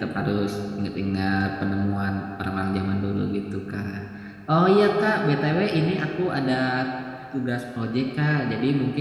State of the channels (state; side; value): identical; both; correlation 1.00